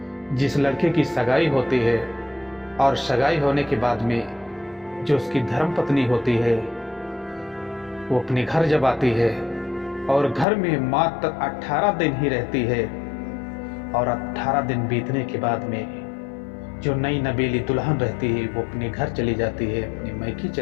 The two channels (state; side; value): drops out; right; at 10.5 s